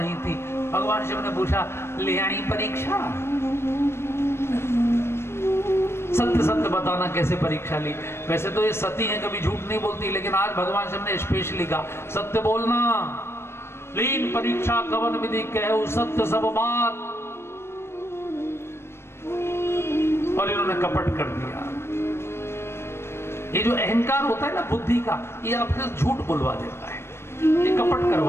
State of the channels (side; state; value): right; late; 0.12 ms